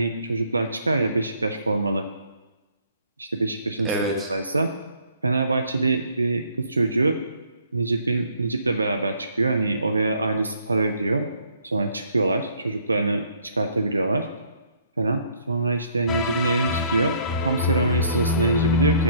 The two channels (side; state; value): both; inverted; correlation -0.63